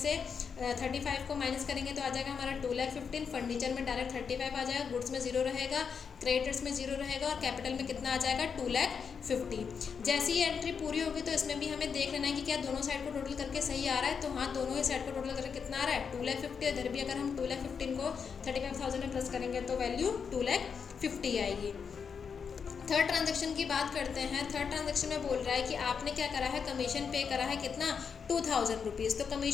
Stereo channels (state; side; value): quieter; right; 6.3 dB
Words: 35 को माइनस करेंगे तो आ जाएगा हमारा 2,15,000। फर्नीचर में डायरेक्ट 35 आ जाएगा, गुड्स में 0 रहेगा, क्रेडिटर्स में 0 रहेगा और कैपिटल में कितना आ जाएगा 2,50,000। जैसे ही एंट्री पूरी होगी तो इसमें भी हमें देख लेना है कि क्या दोनों साइड को टोटल करके सही आ रहा है। तो हाँ, दोनों ही साइड को टोटल करके कितना आ रहा है 2,50,000। इधर भी अगर हम 2,15,000 को 35,000 में प्लस करेंगे तो वैल्यू 2,50,000 आएगी। थर्ड ट्रांजैक्शन की बात करते हैं। थर्ड ट्रांजैक्शन में बोल रहा है कि आपने क्या करा है, कमीशन पे करा है कितना 2,000 रुपीज़। तो